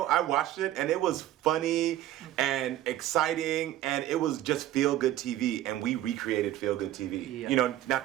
I watched it and it was funny and exciting and it was just feel-good TV, and we recreated feel-good TV. Yeah. Not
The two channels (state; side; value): quieter; left; 13.5 dB